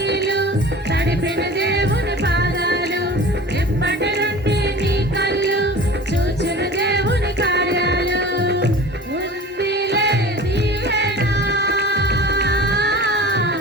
తడిపిన దేవుని పాదాలు, ఇప్పటి నుండి నీ కళ్ళు చూచిన దేవుని కార్యాలు. ఉందిలే దీవెన,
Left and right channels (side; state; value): both; normal; correlation 0.39